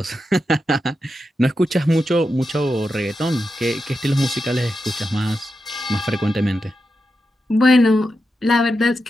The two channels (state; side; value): normal; both; correlation 0.88